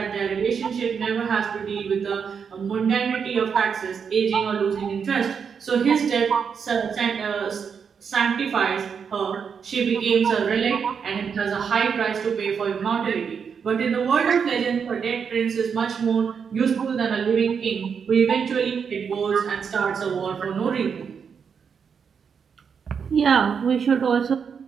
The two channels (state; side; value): quieter; left; 6.6 dB